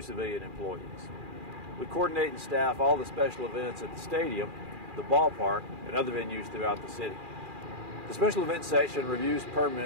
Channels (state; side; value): late; left; 2.4 ms